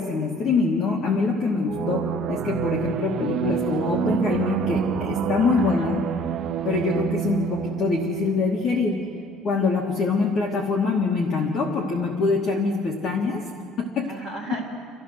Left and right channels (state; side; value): normal; both; correlation 0.55